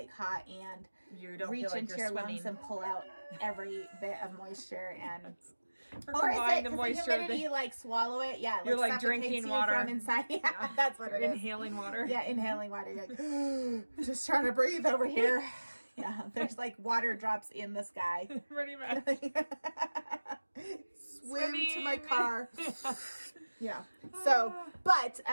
hot and You don't reach feel like into you're your swimming. lungs and pull out every bit of moisture and. Or Or is combine it the because the moisture humidity, like, swallow it? Yeah, You're, like, suffocates drinking you water. from inside. Yeah, that's what You're it is. inhaling water. Yeah, inhaling water. You're like, just trying to breathe over here. Yeah, there's like water drops in the sky. Pretty much. Swim to my Swimming. car. Yeah. So, but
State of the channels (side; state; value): both; inverted; correlation -1.00